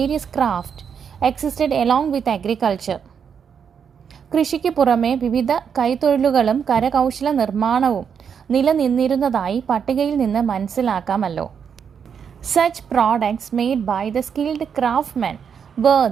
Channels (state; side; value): quieter; left; 7.2 dB